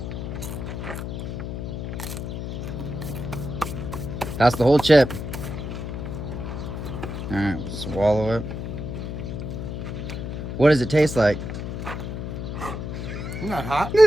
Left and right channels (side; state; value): left; noise; hum, 5 dB below the sound